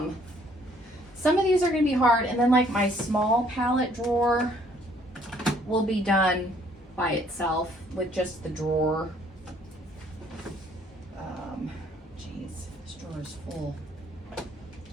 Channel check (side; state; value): both; normal; correlation 0.62